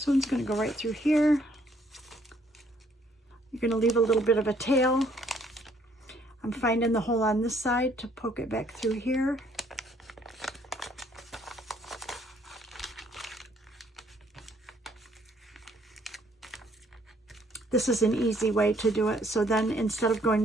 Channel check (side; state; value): both; normal; correlation 0.65